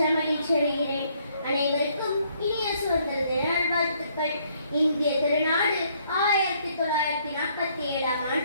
மகிழ்ச்சி அடைகிறேன். அனைவருக்கும் இனிய சுதந்திர தின நல்வாழ்த்துக்கள். இந்திய திருநாடு 1947ஆம்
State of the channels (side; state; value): both; inverted; correlation -0.67